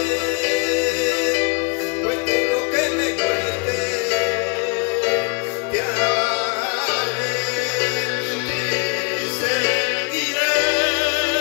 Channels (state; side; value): quieter; right; 32.1 dB